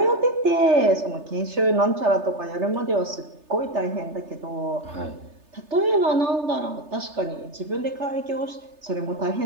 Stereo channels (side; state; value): left; late; 3.3 ms